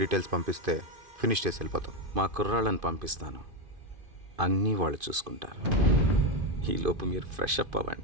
డీటెయిల్స్ పంపిస్తే ఫినిష్ చేసి వెళ్ళిపోతాం. మా కుర్రాళ్ళని పంపిస్తాను, అన్నీ వాళ్ళు చూసుకుంటారు. ఈలోపు మీరు ఫ్రెష్ అప్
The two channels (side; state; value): left; late; 2.5 ms